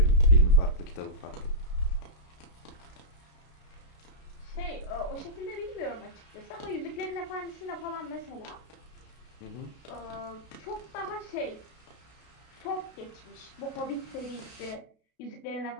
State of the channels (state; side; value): late; right; 32 ms